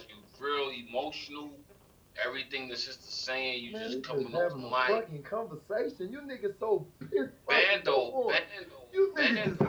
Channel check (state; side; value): identical; both; correlation 1.00